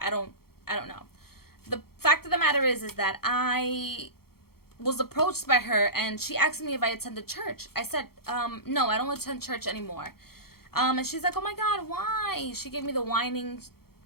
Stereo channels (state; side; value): late; right; 0.94 ms